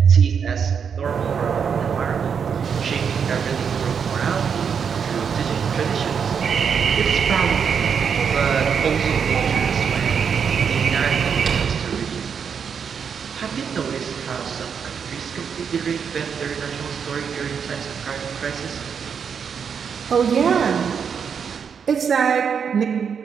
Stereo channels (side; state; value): left; quieter; 6.9 dB